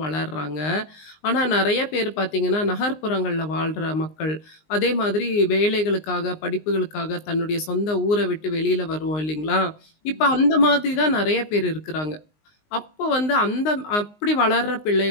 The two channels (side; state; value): right; late; 19 ms